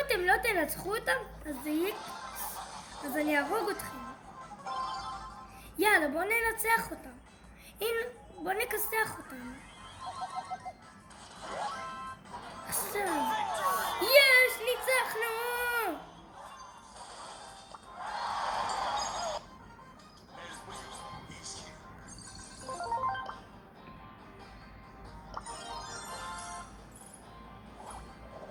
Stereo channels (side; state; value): both; identical; correlation 1.00